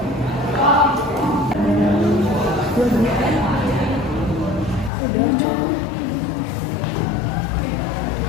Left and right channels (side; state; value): right; drops out; at 4.9 s